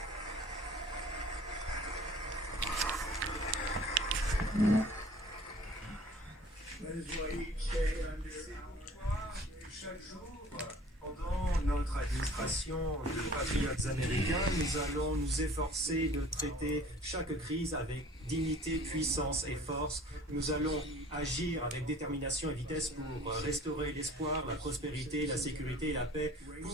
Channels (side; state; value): both; normal; correlation 0.49